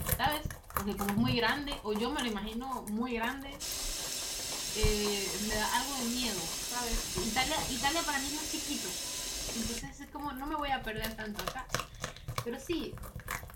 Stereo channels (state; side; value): identical; both; correlation 1.00